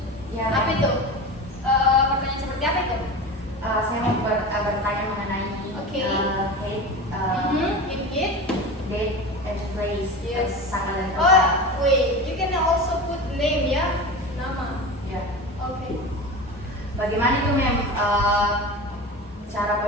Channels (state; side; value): normal; both; correlation 0.29